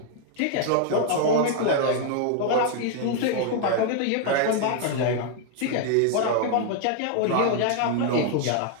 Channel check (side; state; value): both; different; correlation 0.00